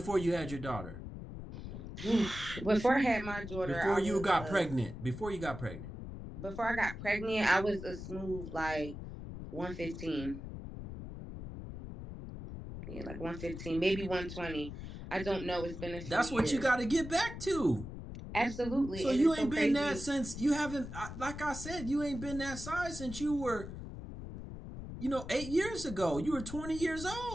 you had your daughter? Before I had my daughter, before you got pregnant. Before you got pregnant. Before I got pregnant, I was a smooth like 115. Yeah, like 115, maybe 120. I don't know. It's been a few That's what years. you got to get back to. Absolutely. So and you ain't been that since you haven't. Like I said, you ain't been that size since you were, 8 years ago. You were 20 years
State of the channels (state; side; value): noise; left; rumble, 9 dB below the sound